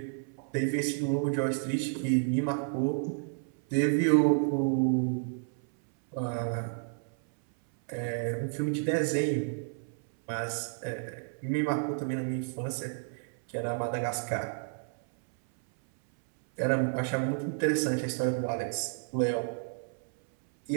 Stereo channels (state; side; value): silent; left; 57 dB below the other